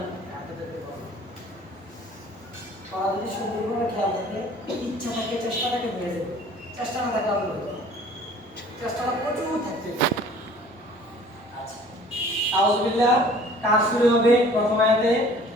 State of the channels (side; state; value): both; normal; correlation 0.50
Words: আপনাদেরকে বলবো যদি সুন্দরভাবে খেয়াল থাকে ইচ্ছা থাকে চেষ্টাটাকে বেড়ে যাবে চেষ্টা না থাকে আপনি চেষ্টাটা প্রচুর থাকতে আচ্ছা আউযুবিল্লাহ কাজ শুরু হবে প্রথম আয়াতে